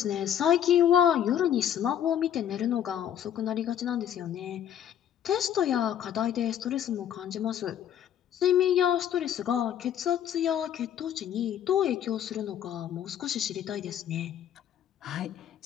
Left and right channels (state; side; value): quieter; right; 9.9 dB